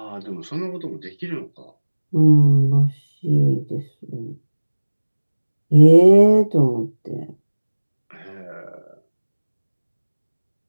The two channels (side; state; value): both; inverted; correlation -1.00